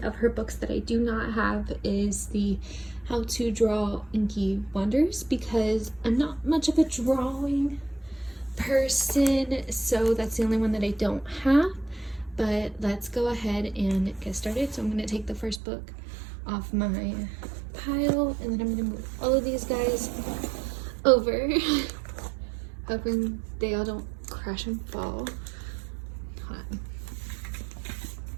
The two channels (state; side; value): drops out; left; at 15.6 s